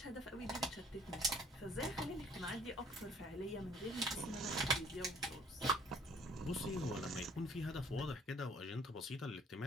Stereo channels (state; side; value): normal; both; correlation 0.58